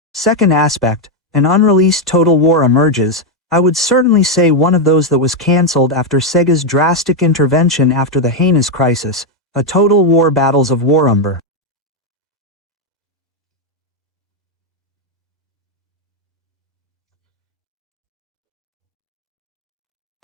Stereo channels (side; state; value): both; normal; correlation 0.03